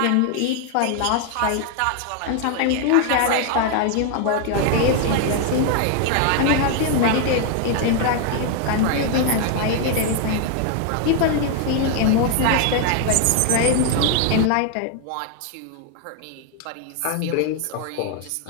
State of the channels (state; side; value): different; both; correlation 0.00